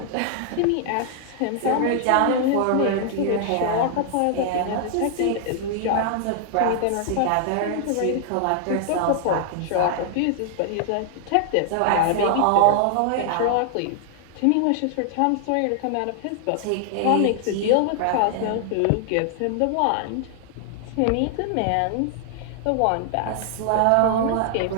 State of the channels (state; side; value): different; both; correlation 0.00